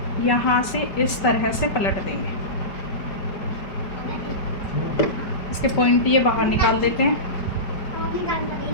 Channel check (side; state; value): right; late; 5.2 ms